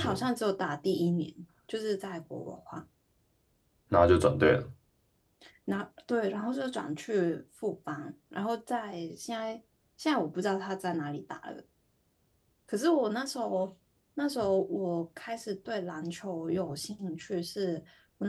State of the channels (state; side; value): identical; both; correlation 1.00